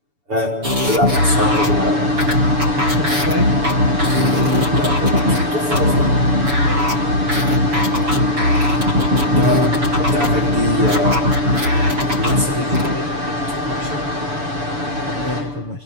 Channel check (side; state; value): left; late; 6.9 ms